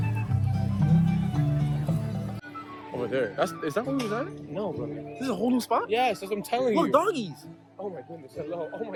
Over there. Is that where we was at? No, bro. This is a whole new spot? Yes, that's what I'm telling you. Look, doggies. Oh my goodness. Hello. Oh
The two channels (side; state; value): both; identical; correlation 1.00